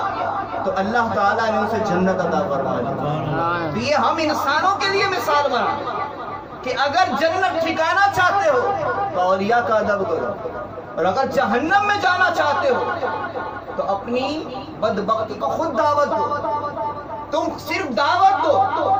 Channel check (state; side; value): identical; both; correlation 1.00